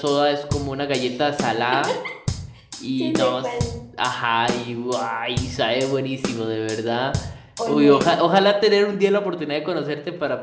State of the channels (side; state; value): both; identical; correlation 1.00